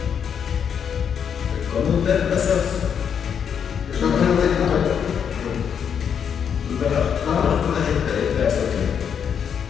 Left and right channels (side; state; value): right; quieter; 7.7 dB